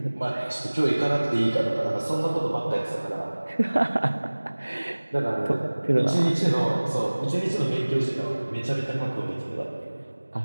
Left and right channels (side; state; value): both; inverted; correlation -1.00